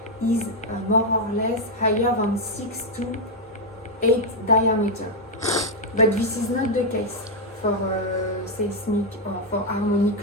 is more or less higher than 6 to 8 diameter. But this is not the case for seismic or for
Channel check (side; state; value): both; normal; correlation 0.01